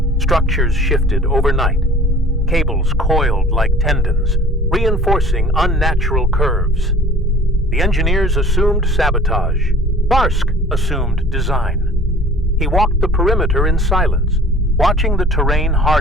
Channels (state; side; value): normal; both; correlation 0.48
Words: Structures shifted overnight. Cables coiled like tendons, reinforcing unnatural curves. The engineers assumed sabotage. Tharsk assumed design. He walked the perimeter in silence, watching the terrain